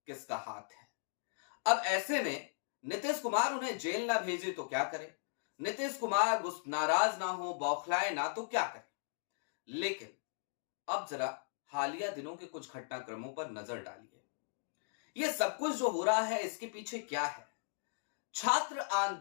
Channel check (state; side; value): silent; right; digital silence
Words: किसका हाथ है। अब ऐसे में नीतीश कुमार उन्हें जेल ना भेजे तो क्या करे, नीतीश कुमार उस नाराज ना हो, बौखलाए ना तो क्या करे। लेकिन अब जरा हालिया दिनों के कुछ घटनाक्रमों पर नजर डालिए। यह सब कुछ जो हो रहा है इसके पीछे क्या है। छात्र